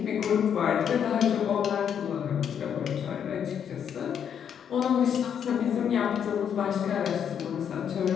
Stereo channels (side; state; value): right; quieter; 8.3 dB